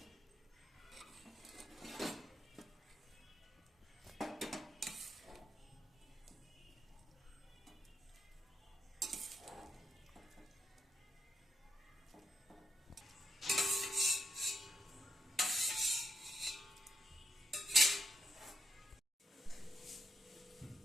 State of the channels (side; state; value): both; normal; correlation 0.81